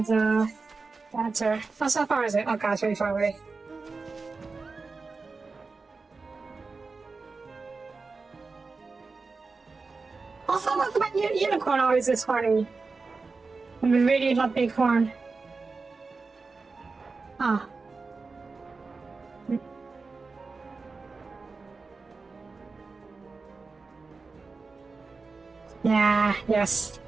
a dancer. Oh, so far is it? Oh god, it's really far away. Also, what's about unicorn always this horny? I really love big horn. Ah. Yeah, yes,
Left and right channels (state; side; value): quieter; left; 4.2 dB